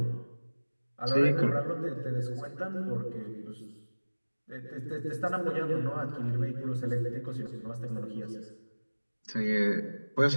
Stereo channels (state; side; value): inverted; both; correlation -1.00